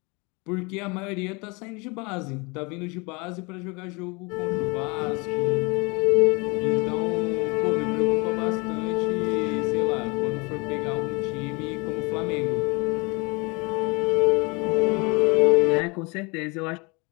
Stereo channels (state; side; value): quieter; right; 28.3 dB